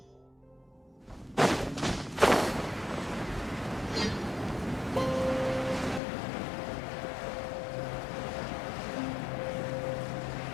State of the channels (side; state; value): right; drops out; at 6.0 s